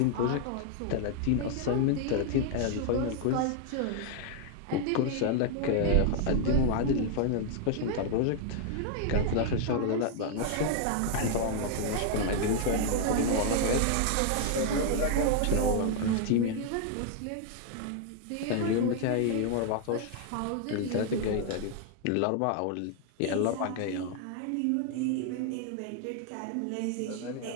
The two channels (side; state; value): both; different; correlation 0.00